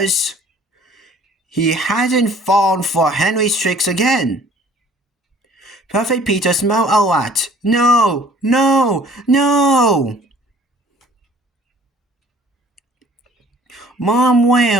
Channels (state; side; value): normal; both; correlation 0.53